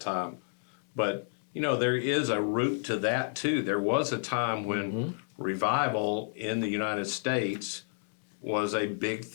time. But, there is a root to that too. There was a time when revival in the United States was a big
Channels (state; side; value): silent; right; digital silence